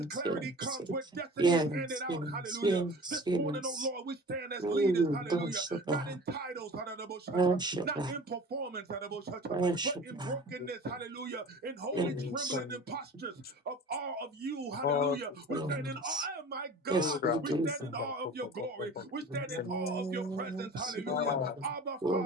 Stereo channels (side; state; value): both; normal; correlation 0.40